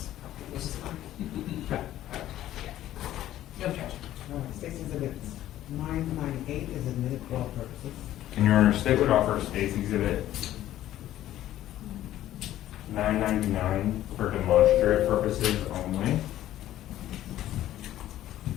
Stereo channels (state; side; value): quieter; right; 13.2 dB